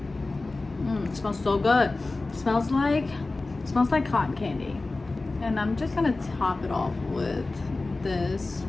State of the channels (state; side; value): quieter; right; 3.3 dB